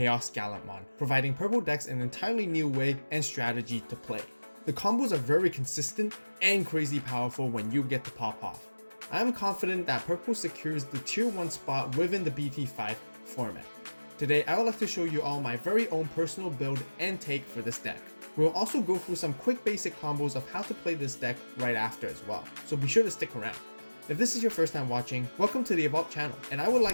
providing purple decks an entirely new way and strategy to play. The combos are very consistent and crazy powerful when you get to pop off. I am confident that purple secures the tier 1 spot within the BT5 format. Today I would like to show you all my very own personal build and take for this deck. We'll also go through some quick basic combos of how to play this deck right after as well, so be sure to stick around. If this is your first time watching, welcome to the AVAULT channel, and I would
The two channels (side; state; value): both; inverted; correlation -1.00